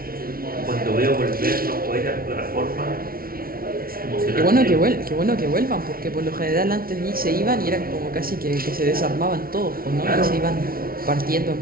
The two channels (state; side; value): late; left; 0.43 ms